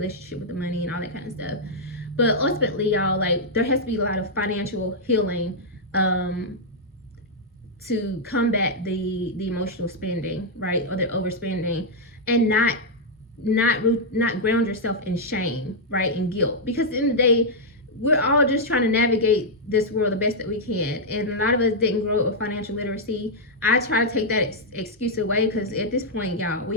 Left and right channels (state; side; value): normal; both; correlation -0.05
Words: with the money and all that kind of stuff. But ultimately, y'all, like, there has to be a lot of financial healing to combat the emotional spending, right, or the overspending, and not not ground yourself in shame, right, and guilt, because at the end of the day, we're all just trying to navigate this world the best that we can, and a lot of us didn't grow up with financial literacy. I try to take that excuse away, because at this point, y'all,